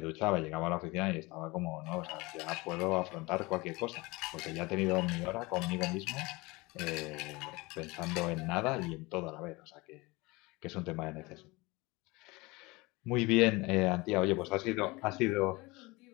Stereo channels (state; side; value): quieter; right; 23.4 dB